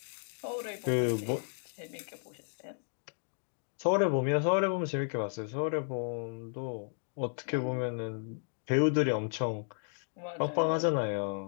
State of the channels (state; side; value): silent; right; 55 dB below the other